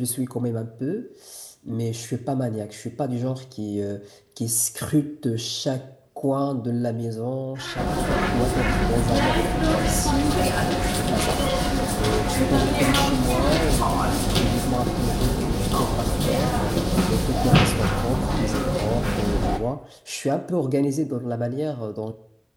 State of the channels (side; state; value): both; identical; correlation 1.00